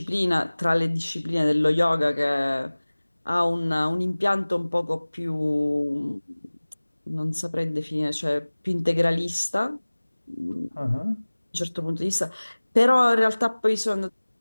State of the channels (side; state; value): both; inverted; correlation -1.00